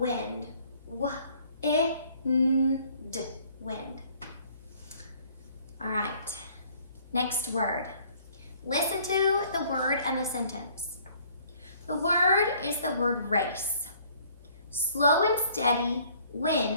W-I-N-D, wind. All right, next word. Listen to the word and the sentence. The word is the word race. Slow and steady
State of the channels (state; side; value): inverted; both; correlation -0.59